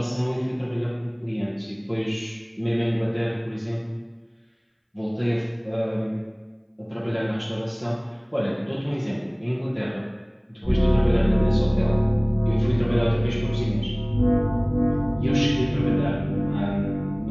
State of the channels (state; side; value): identical; both; correlation 1.00